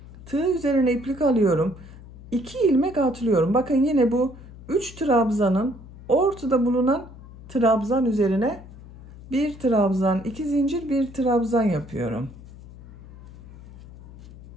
Tığ üzerine iplik alıyorum. 2 ilmek atlıyorum. Bakın, yine bu 3 trabzanın ortada bulunan trabzan üzerine bir trabzan, 2 zincir, bir trabzan yapıyorum.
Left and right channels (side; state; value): left; noise; hum, 17 dB below the sound